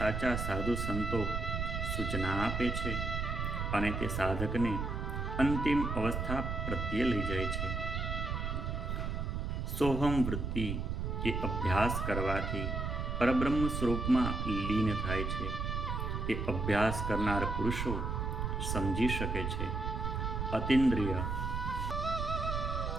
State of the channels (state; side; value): noise; right; rumble, 2 dB below the sound